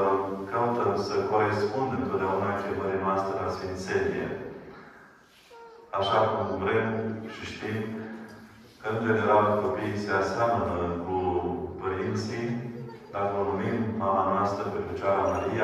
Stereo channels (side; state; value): both; identical; correlation 1.00